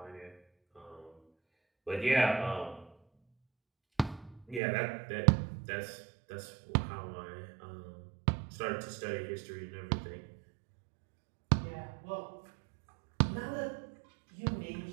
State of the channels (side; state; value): left; drops out; at 4.6 s